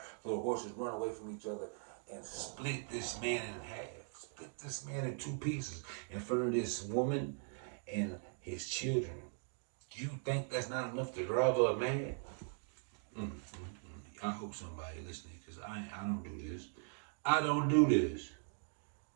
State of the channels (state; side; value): silent; left; 51 dB below the other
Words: so the horses run away from each other and split this man in half. Split this man in 2 pieces in front of this woman and his children. You think that's not enough to drive her mad? I hope somebody listening, because I don't do this. I don't do this.